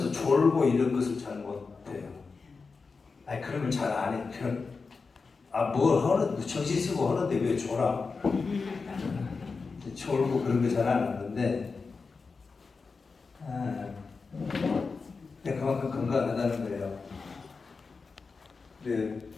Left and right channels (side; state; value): right; quieter; 4.6 dB